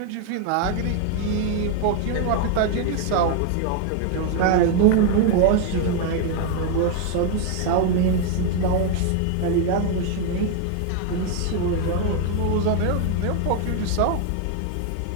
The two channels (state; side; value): different; both; correlation 0.01